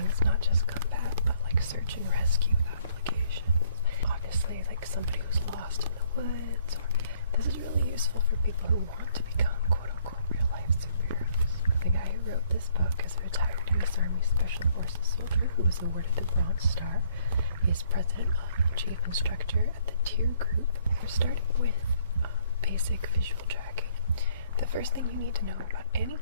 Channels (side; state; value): both; inverted; correlation -0.64